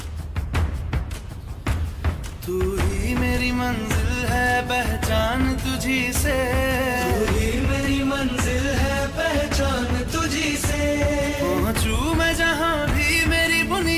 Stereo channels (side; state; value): both; identical; correlation 1.00